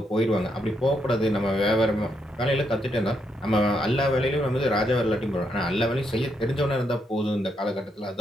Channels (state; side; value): normal; both; correlation 0.78